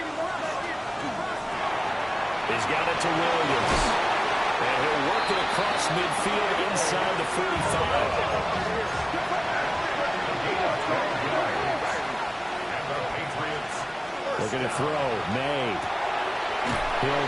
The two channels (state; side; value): identical; both; correlation 1.00